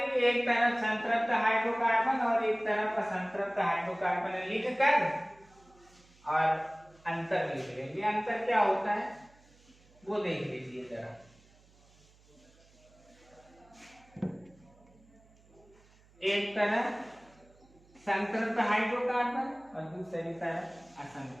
एक तरफ संतृप्त हाइड्रोकार्बन और एक तरफ असंतृप्त हाइड्रोकार्बन लिखकर और अंतर लिख लेंगे। अंतर क्या होता है वो देख लीजिए जरा। एक तरफ संतृप्त हाइड्रोकार्बन और दूसरी तरफ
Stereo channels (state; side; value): noise; right; hum, 28 dB below the sound